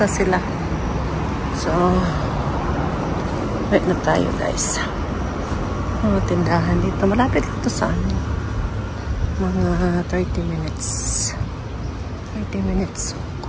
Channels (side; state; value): both; identical; correlation 1.00